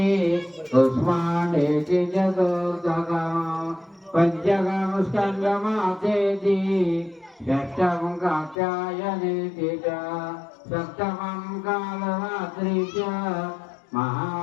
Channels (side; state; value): right; drops out; at 8.6 s